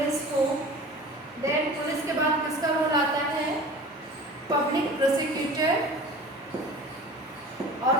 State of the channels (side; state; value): both; normal; correlation 0.39